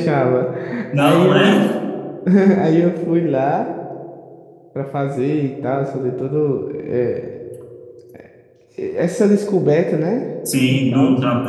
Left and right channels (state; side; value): identical; both; correlation 1.00